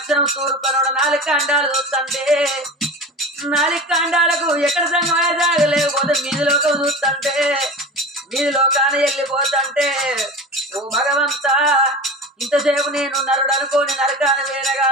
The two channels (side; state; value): both; normal; correlation 0.32